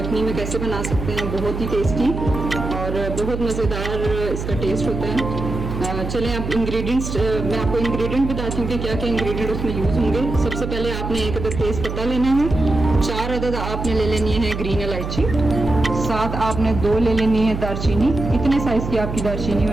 में कैसे बना सकते हैं। बहुत ही टेस्टी और बहुत मज़ेदार इसका टेस्ट होता है। चलें अब इंग्रेडिएंट्स मैं आपको इंग्रेडिएंट बताती हूँ कि क्या क्या इंग्रेडिएंट उसमें यूज़ होंगे। सबसे पहले आपने एक अदद तेज़ पत्ता लेना है, 4 अदद आपने ले लेनी है ग्रीन इलायची, 7 आपने 2 ले लेनी है दारचीनी। इतने साइज़ की आपकी दारचीनी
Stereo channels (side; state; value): right; noise; hum, 6 dB below the sound